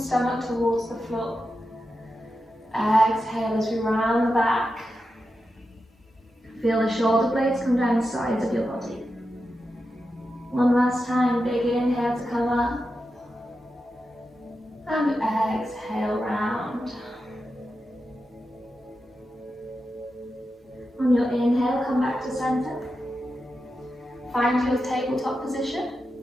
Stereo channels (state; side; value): normal; both; correlation 0.89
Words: towards the floor. Exhale as we round the back. Feel the shoulder blades come down the sides of your body. One last time, big inhale to come up. And exhale, round. On your inhale, come back to center. Find your tabletop position.